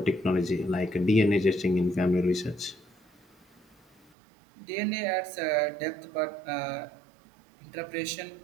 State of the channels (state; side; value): drops out; left; at 4.1 s